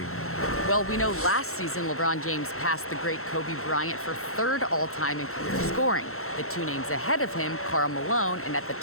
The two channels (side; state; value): right; late; 0.63 ms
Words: Well, we know last season LeBron James passed the great Kobe Bryant for third all-time in career scoring. The two names ahead of him, Karl Malone, and at the